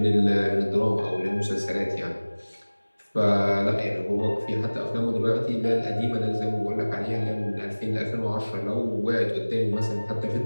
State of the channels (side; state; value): both; inverted; correlation -1.00